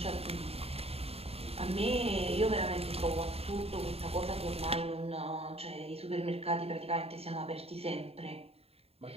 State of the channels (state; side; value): late; left; 0.29 ms